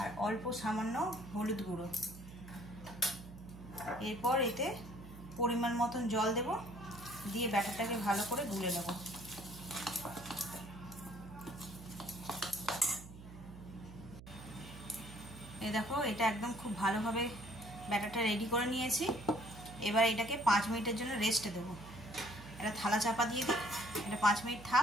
অল্প সামান্য হলুদ গুঁড়ো। এরপর এতে পরিমাণ মতন জল দেব, দিয়ে ব্যাটারটাকে ভালো করে গুলে নেব। এই দেখো এটা একদম খুব ভালোভাবে ব্যাটারটা রেডি করে নিয়েছি। এবার এটাকে 5 মিনিটের জন্য রেস্টে দেবো। এটা থালা চাপা দিয়ে দিই, এটা 5 মিনিট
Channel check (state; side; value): noise; right; hum, 15 dB below the sound